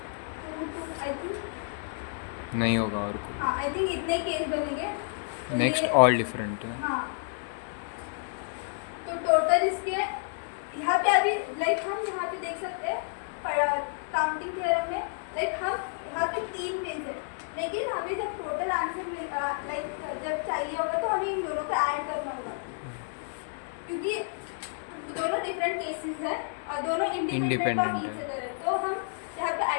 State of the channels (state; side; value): silent; right; digital silence